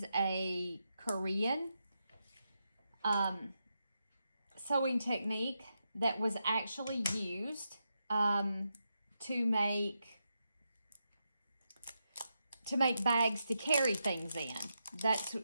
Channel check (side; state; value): both; inverted; correlation -0.85